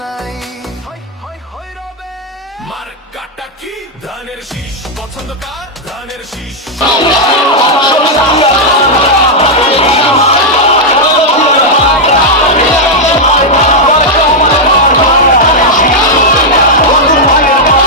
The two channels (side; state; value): both; normal; correlation -0.03